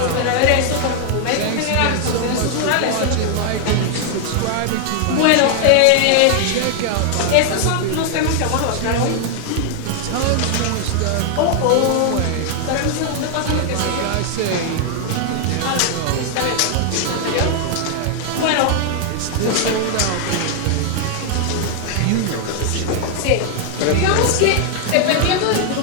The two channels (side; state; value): both; different; correlation 0.00